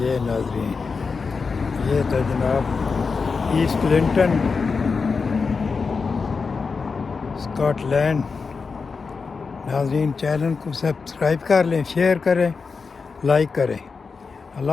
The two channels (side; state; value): right; quieter; 4.9 dB